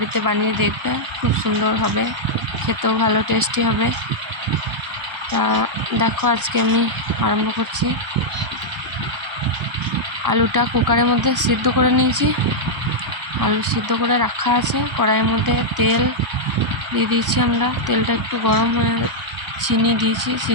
বানিয়ে দেখবে, খুব সুন্দর হবে, খেতেও ভালো টেস্টি হবে। তা দেখো, আজকে আমি আরম্ভ করছি। আলুটা কুকারের মধ্যে সিদ্ধ করে নিয়েছি। আলু সিদ্ধ করে রাখা আছে। কড়াইয়ের মধ্যে তেল দিয়ে দিয়েছি আমরা। তেলটা একটু গরম হয়ে, চিনি দিয়েছি,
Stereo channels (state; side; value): late; left; 1.0 ms